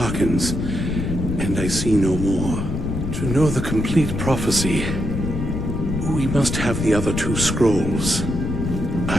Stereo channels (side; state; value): left; noise; rumble, 3 dB below the sound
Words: and I see no more. To know the complete prophecy, we must have the other two scrolls.